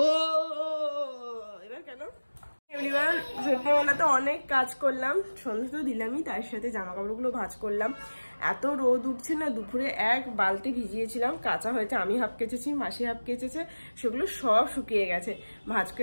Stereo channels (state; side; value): inverted; both; correlation -1.00